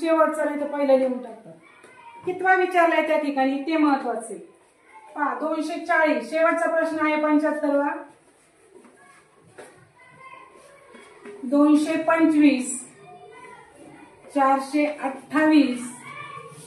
नाही तर पहिलं लिहून टाकतात. कितवा विचारलाय त्या ठिकाणी ते महत्वाचे पहा. 240 शेवटचा प्रश्न आहे 75वा. 225, 428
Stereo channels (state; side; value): identical; both; correlation 1.00